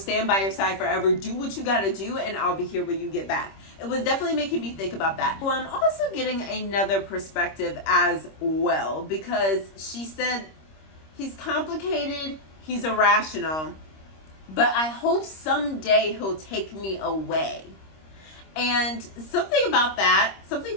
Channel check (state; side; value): late; right; 26 ms